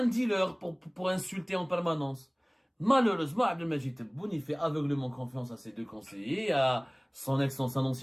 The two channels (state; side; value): identical; both; correlation 1.00